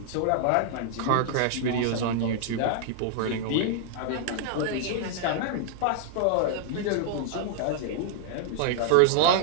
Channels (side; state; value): both; different; correlation -0.01